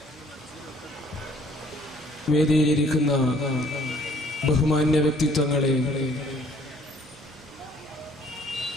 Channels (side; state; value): both; normal; correlation 0.59